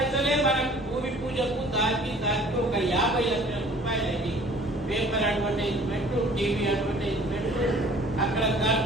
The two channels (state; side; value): normal; both; correlation 0.51